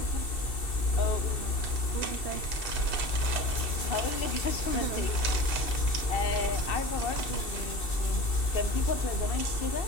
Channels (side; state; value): right; late; 2.7 ms